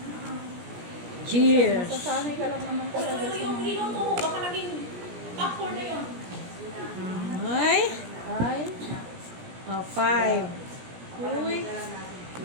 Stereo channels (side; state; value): left; late; 17 ms